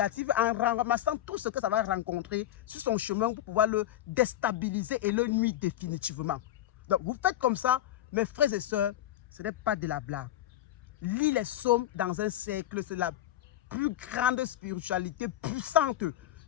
en ramassant tout ce que ça va rencontrer sur son chemin pour pouvoir le déstabiliser et le nuire définitivement. Donc vous faites comme ça, mes frères et sœurs, ce n'est pas de la blague. Lis les psaumes dans un cercle, c'est la plus grande spiritualité puissante.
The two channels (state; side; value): quieter; right; 12.7 dB